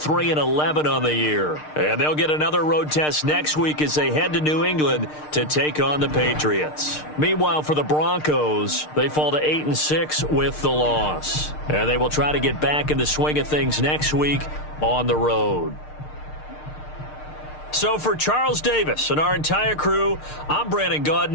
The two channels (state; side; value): late; right; 6.6 ms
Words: on the year. And they'll get another road test next week as they head to New England to take on the Patriots. Meanwhile, for the Broncos, they fall to 8-6 with the loss. And they will try to get back in the swing of things next week on the road. So for Charles Davis and our entire crew, I'm Brandon